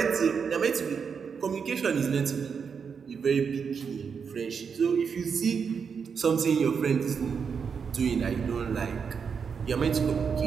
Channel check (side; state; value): left; quieter; 6.2 dB